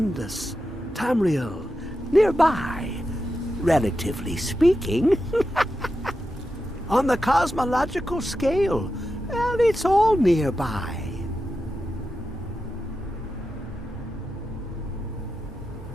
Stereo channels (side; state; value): both; normal; correlation 0.89